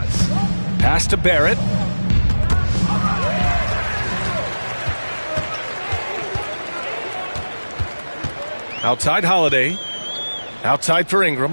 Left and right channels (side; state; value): both; inverted; correlation -1.00